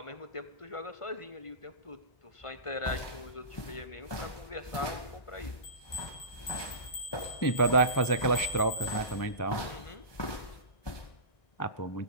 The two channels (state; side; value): late; right; 1.2 ms